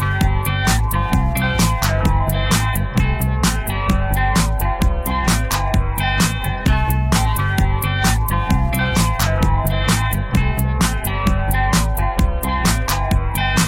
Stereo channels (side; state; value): both; identical; correlation 1.00